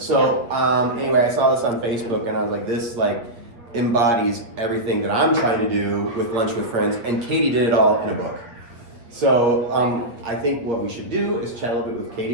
So anyway, I saw this on Facebook and I was like, this embodies everything that I'm trying to do with Lunch with Friends, and Katie did it all in a book. So I think what we should do is chat a little bit with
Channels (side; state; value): left; late; 8.3 ms